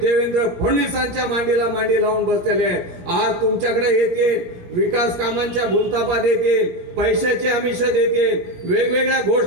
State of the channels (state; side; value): late; left; 17 ms